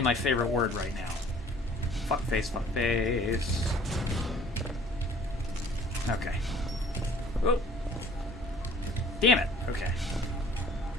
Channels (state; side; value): normal; both; correlation 0.53